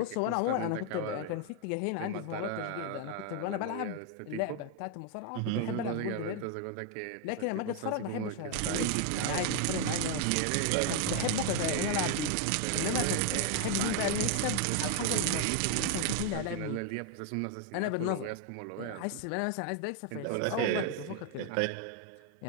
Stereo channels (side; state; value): both; different; correlation 0.00